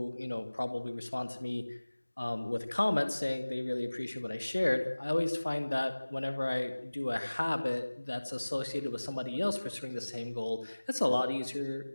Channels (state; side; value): inverted; both; correlation -1.00